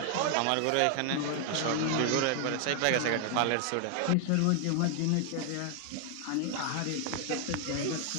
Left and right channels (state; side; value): different; both; correlation 0.00